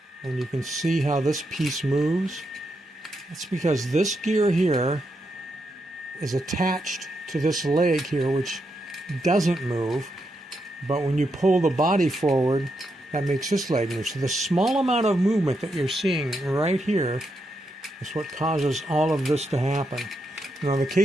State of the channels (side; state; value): both; normal; correlation 0.83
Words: and you can see how this piece moves. That's because this gear here is attached to this leg here, which doesn't move, but when you pull the body forward, that makes this leg move. So the small amount of movement that you're seeing right here is what causes all of this to happen. Now in the